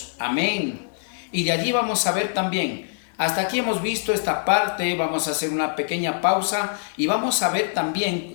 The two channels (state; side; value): silent; right; digital silence